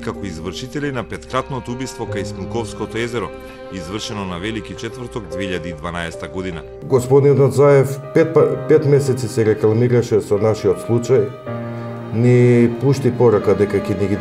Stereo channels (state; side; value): identical; both; correlation 1.00